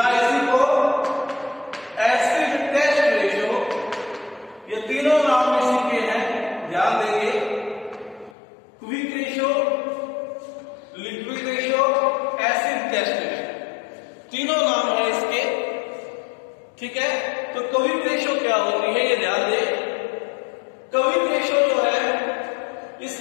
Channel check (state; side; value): drops out; right; at 8.3 s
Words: इसी को एसिड टेस्ट रेशियो, ये तीनों नाम इसी के हैं, ध्यान देंगे। Quick ratio, liquid ratio, acid test ratio, तीनों नाम है इसके, ठीक है। तो क्विक रेशियो क्या होती है ये ध्यान दें। क्विक रेशियो जो है